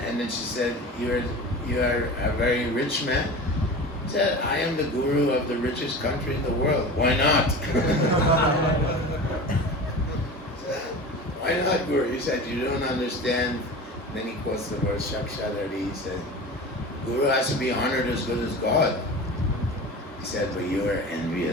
then she said, you are a very rich man. He said, I am the guru of the richest country in the world. Why not? Why not, Guru? He said, you don't understand. And then he quotes the verse, Shakshadari. He said, Guru has to be honored as good as God. He said, but you are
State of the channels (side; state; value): both; normal; correlation 0.33